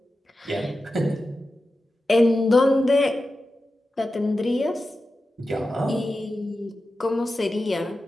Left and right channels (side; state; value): both; normal; correlation 0.92